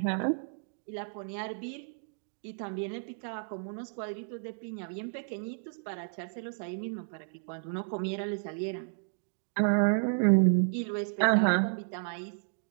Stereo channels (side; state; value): left; silent; digital silence